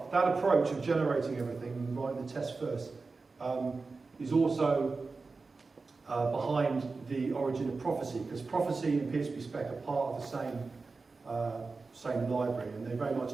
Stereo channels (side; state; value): left; quieter; 4.1 dB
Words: that approach of generating everything and writing the test first is also behind the origin of Prophecy, because Prophecy and PHP spec are part of the same library, and they very